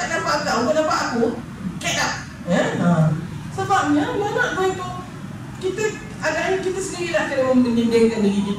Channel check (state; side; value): identical; both; correlation 1.00